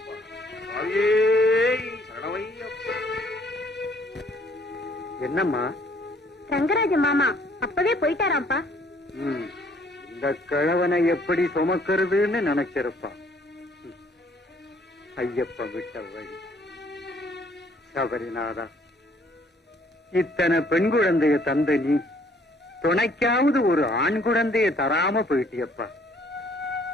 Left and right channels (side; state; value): both; normal; correlation 0.62